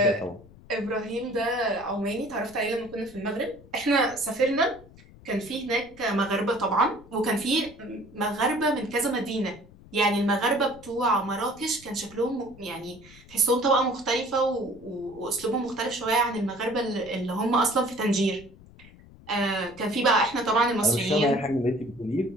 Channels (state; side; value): noise; left; rumble, 22 dB below the sound